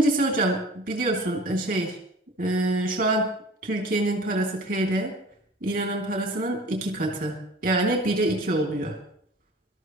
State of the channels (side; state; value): both; normal; correlation 0.44